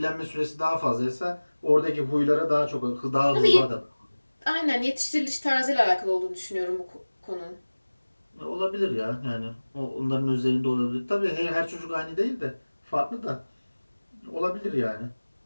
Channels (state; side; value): inverted; both; correlation -1.00